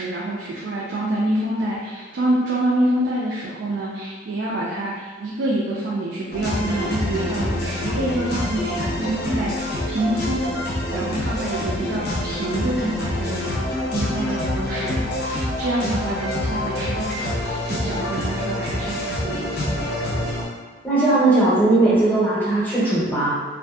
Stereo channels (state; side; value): normal; both; correlation 0.58